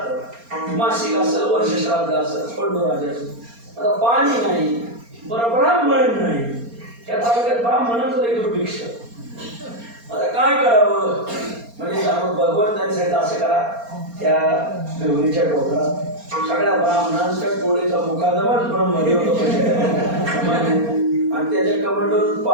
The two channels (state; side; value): late; left; 4.3 ms